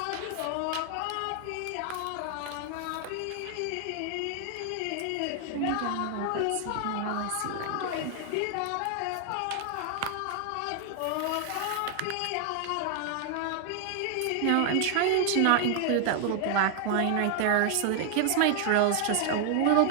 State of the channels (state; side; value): different; both; correlation 0.00